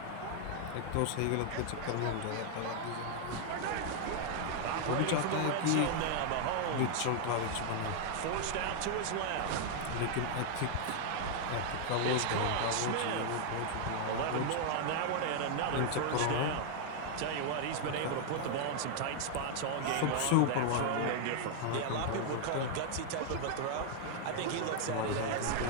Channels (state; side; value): different; both; correlation 0.00